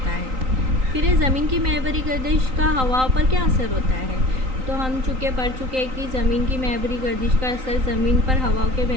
है। फिर ज़मीन की महवरी गर्दिश का हवाओं पर क्या असर होता है? तो हम पढ़ चुके हैं कि ज़मीन की महवरी गर्दिश का असर ज़मीन पर हवाओं के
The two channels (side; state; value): left; late; 3.9 ms